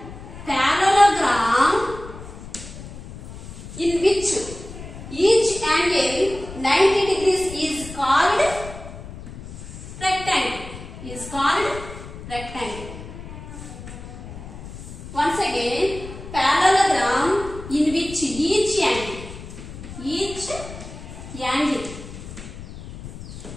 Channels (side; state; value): left; noise; rumble, 13 dB below the sound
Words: parallelogram in which each angle 90 degrees is called rectangle. Once again, parallelogram in which each